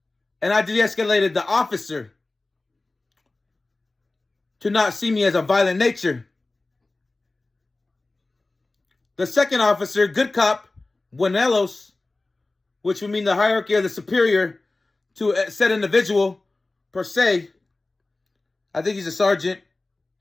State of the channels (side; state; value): right; quieter; 3.2 dB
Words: And I de-escalated the officer to not see me as a violent nature. The second officer, good cop, Buenelos, which would mean the hierarchy of the superior to a said individual per se, I think he's a sergeant,